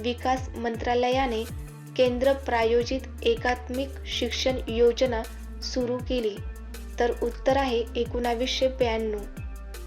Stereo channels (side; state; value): both; identical; correlation 1.00